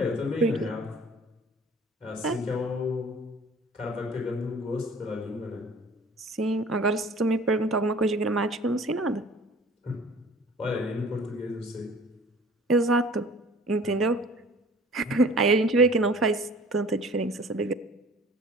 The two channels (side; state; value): both; normal; correlation 0.48